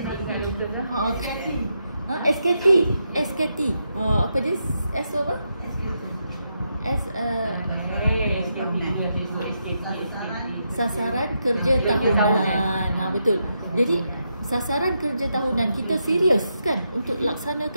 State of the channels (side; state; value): both; inverted; correlation -0.83